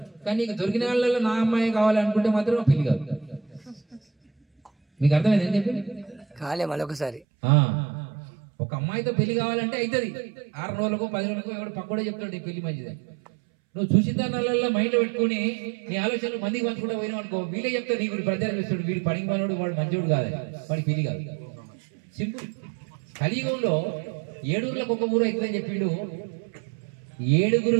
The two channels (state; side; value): drops out; left; at 7.2 s